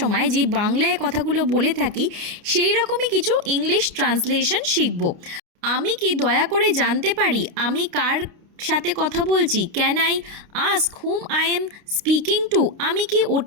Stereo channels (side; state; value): left; late; 29 ms